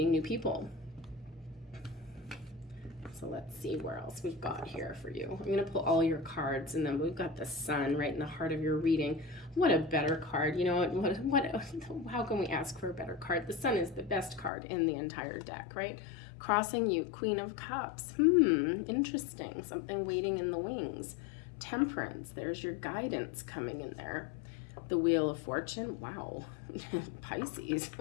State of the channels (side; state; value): right; drops out; at 14.5 s